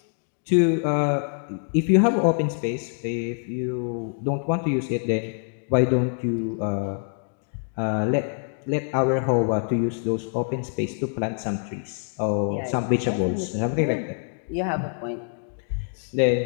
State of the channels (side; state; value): right; silent; 62 dB below the other